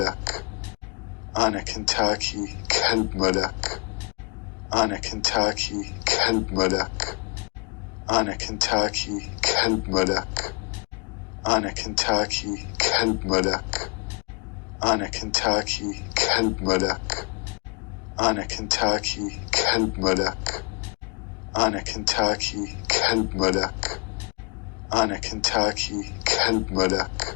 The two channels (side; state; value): right; quieter; 30.7 dB